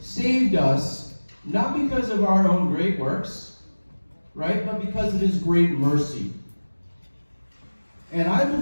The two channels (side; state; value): both; inverted; correlation -1.00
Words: us not because of our own great works, right, but because of his great mercy. And I